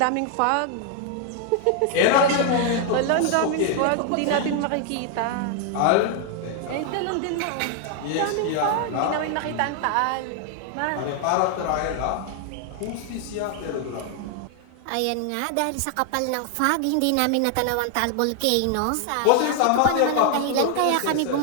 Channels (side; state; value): both; different; correlation 0.00